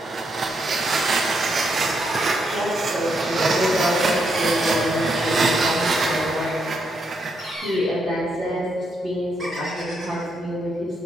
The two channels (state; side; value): normal; both; correlation 0.78